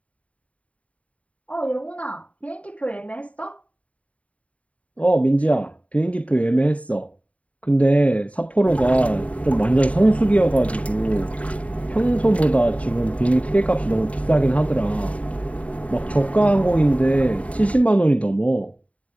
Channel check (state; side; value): late; right; 0.066 ms